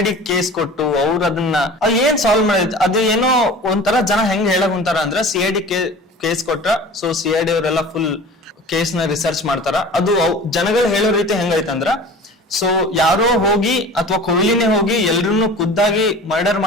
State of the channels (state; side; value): normal; both; correlation 0.40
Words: ಕೇಸ್ ಕೊಟ್ಟು ಅವ್ರು ಅದನ್ನ ಏನ್ ಸಾಲ್ವ್ ಮಾಡಿದ್ ಅದು ಏನೋ ಒಂಥರ ಜನ ಹೆಂಗ್ ಹೇಳಕ್ ಕುಂತಾರ ಅಂದ್ರೆ CID ಕೇಸ್ ಕೊಟ್ರ ಸೊ CID ಅವರೆಲ್ಲ ಫುಲ್ ಕೇಸ್ ನ ರಿಸರ್ಚ್ ಮಾಡ್ತಾರ. ಅದು ಜನಗಳು ಹೇಳೋ ರೀತಿ ಹೆಂಗೈತಂದ್ರ ಸೊ ಯಾರೋ ಹೋಗಿ ಅಥವಾ ಕೊಹ್ಲಿನೇ ಹೋಗಿ ಎಲ್ರನ್ನೂ ಖುದ್ದಾಗಿ ಮರ್ಡರ್